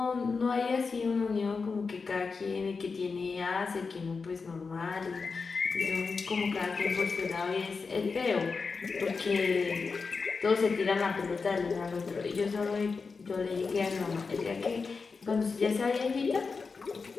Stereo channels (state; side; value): quieter; right; 4.7 dB